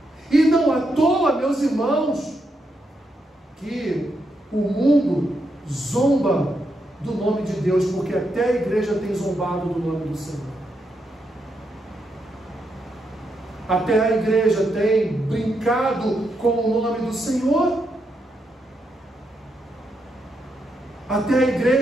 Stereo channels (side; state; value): both; normal; correlation 0.81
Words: E não à toa, meus irmãos, que o mundo zomba do nome de Deus, porque até a igreja tem zombado do nome do Senhor. Até a igreja tem brincado com o nome do Senhor. Até a